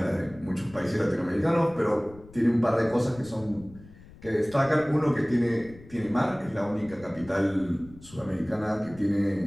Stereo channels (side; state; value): left; noise; rumble, 21 dB below the sound